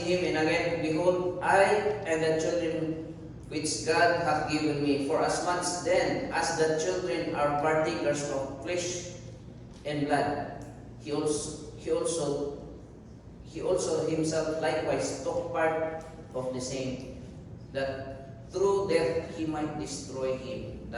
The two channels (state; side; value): identical; both; correlation 1.00